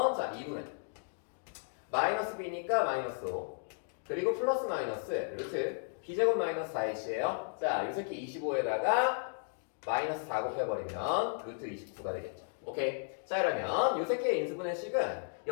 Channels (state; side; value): silent; right; digital silence